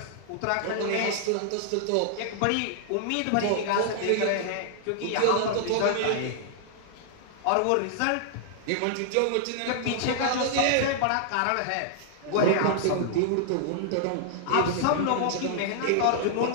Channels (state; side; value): different; both; correlation -0.01